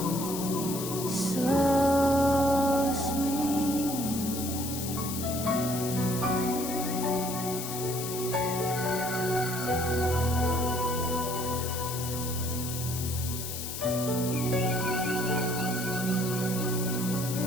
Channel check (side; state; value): left; noise; hiss, 6 dB below the sound